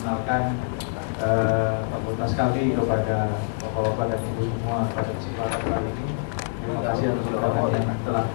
fakultas kami kepada bapak-bapak dan ibu semua pada kesempatan kali ini. Terima kasih atas undangan yang telah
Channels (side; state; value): right; silent; digital silence